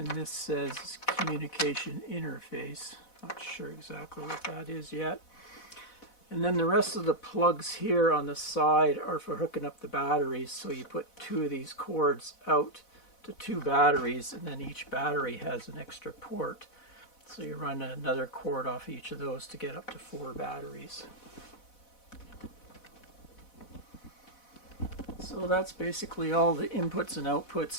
this says communication interface. Not sure exactly what that is yet. And then the rest of the plugs here on the side are for hooking up the batteries. So you put 2 of these cords out to 2 batteries, and then each battery has an extra port. So you run another cord off each of those to get up to 4 batteries. So that's basically all the inputs and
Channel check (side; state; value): right; late; 4.1 ms